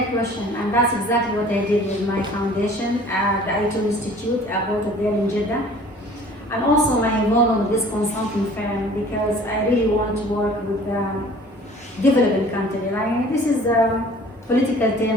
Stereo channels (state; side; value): normal; both; correlation 0.49